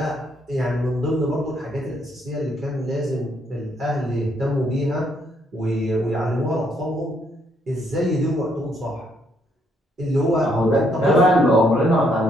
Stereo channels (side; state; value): both; normal; correlation 0.72